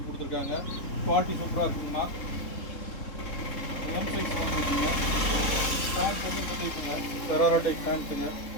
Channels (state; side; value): late; right; 3.7 ms